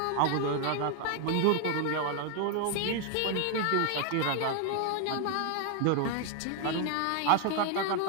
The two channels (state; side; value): different; both; correlation 0.00